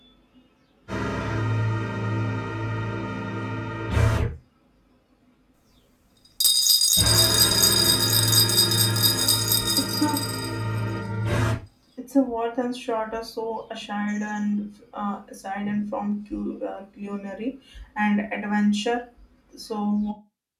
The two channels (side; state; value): both; identical; correlation 1.00